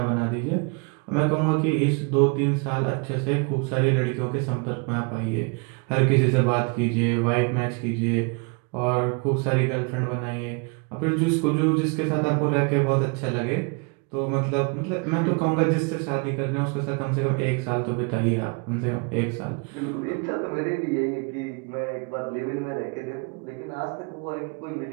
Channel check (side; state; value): left; quieter; 33.4 dB